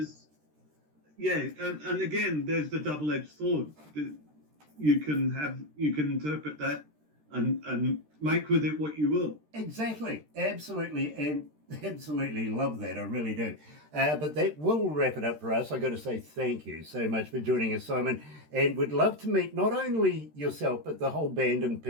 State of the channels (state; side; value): late; left; 13 ms